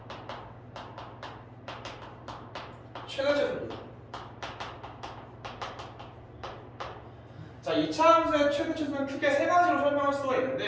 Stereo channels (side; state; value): both; identical; correlation 1.00